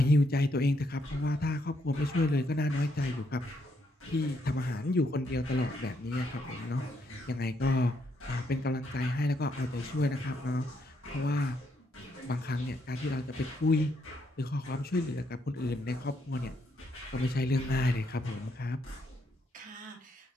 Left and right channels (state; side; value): normal; both; correlation 0.75